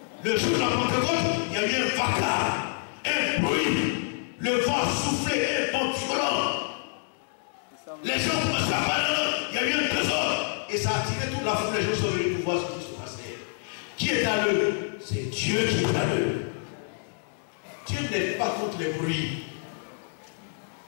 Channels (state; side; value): silent; right; 60 dB below the other